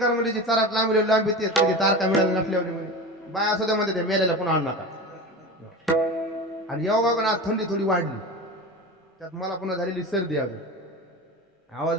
म्हणजे चारात लांबी लांबी ते कधी तारका मिळाल्या नसल्यावर बाय असं मध्ये ते मेलेला पुन्हा आणू नका आणि योगा पण आज थंडी थोडी वाढली त्यात मला पुन्हा झालेली सर्दी अजून आवाज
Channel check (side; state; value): both; normal; correlation 0.29